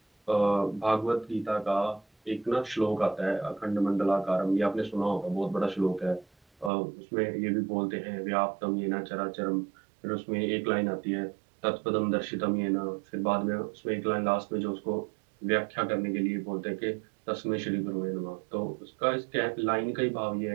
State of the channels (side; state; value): left; drops out; at 6.7 s